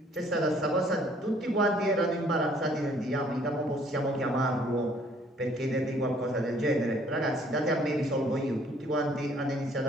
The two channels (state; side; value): normal; both; correlation 0.60